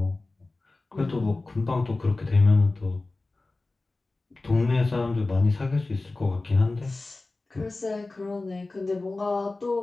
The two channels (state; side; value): quieter; right; 3.2 dB